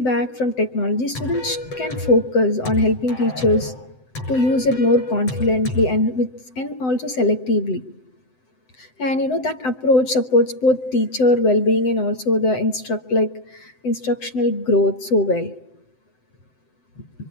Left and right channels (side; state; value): right; late; 7.8 ms